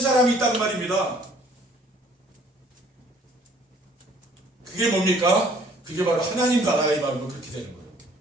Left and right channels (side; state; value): both; normal; correlation 0.57